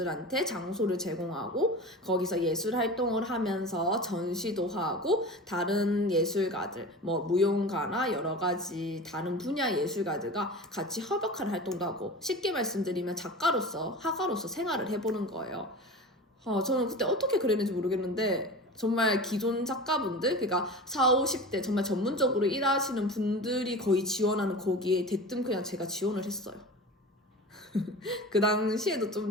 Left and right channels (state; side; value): normal; both; correlation 0.33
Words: 장소를 제공하고 거기서 예술 활동을 하면서 전시도 하고 다른 예술가들 뭐 무용가나 여러 가지 다른 분야 예술가들과 같이 협업하는 활동도 하고 쉽게 말씀드리면 작가로서 화가로서 생활을 해보는 거예요. 저는 그때 어떻게 그랬는지 모르겠는데 정말 기존 작가분들 그러니까 40, 50대 정말 전문적으로 일하시는 분들이 거의 지원하는 거기에 대뜸 그냥 제가 지원을 했어요. 그 당시에도 좀